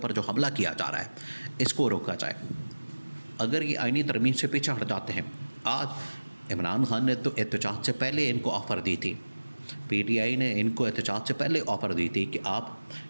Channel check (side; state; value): both; inverted; correlation -1.00